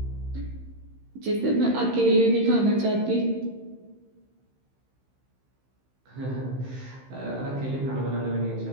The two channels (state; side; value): late; left; 15 ms